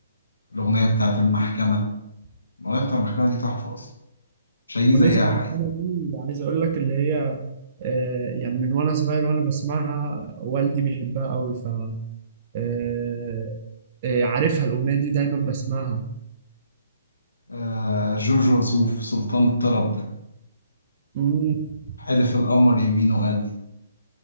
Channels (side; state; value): both; inverted; correlation -0.66